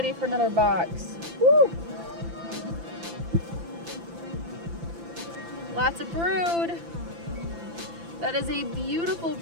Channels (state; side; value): late; left; 5.9 ms